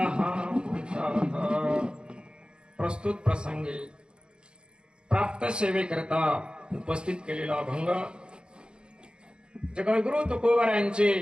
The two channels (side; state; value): left; late; 0.052 ms